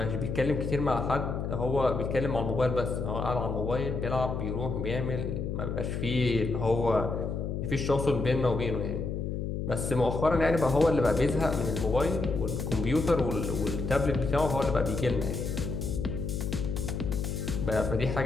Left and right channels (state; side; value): noise; left; hum, 3 dB below the sound